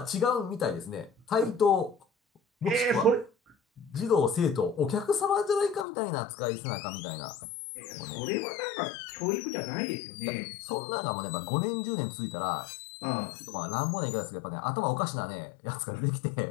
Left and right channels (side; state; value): right; drops out; at 5.9 s